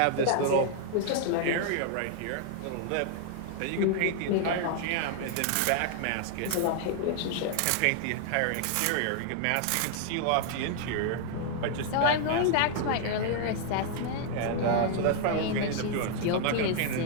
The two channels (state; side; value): different; both; correlation 0.00